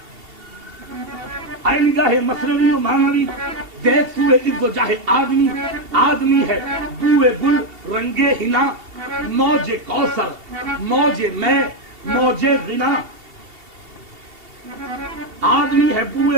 اے نگاہ مصنوی و معنوی، دیکھ سوئے عز و جاہ آدمی، آدمی ہے بوئے گل رنگے ہنا۔ موج کوثر موج میں موج غنا، آدمی ہے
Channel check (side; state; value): left; late; 2.7 ms